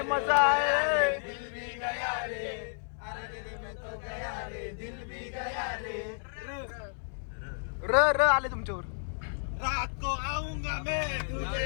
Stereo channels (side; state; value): right; silent; 57 dB below the other